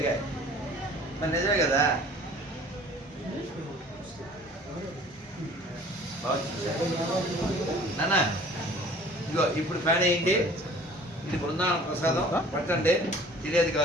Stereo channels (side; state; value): both; normal; correlation 0.49